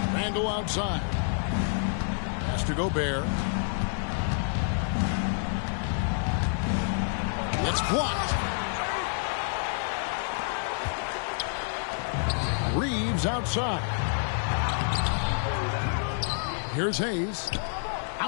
Randall outside. Pass to Gobert. It's blocked. Reeves outside. Here's Hayes.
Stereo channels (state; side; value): silent; right; 59 dB below the other